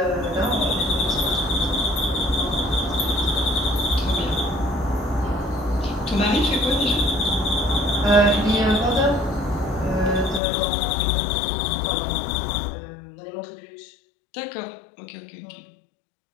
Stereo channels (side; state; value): right; drops out; at 10.4 s